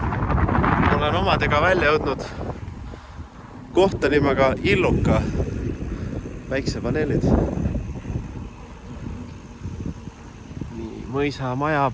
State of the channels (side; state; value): both; identical; correlation 1.00